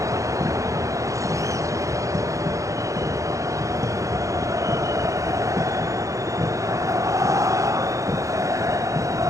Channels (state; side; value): late; left; 0.15 ms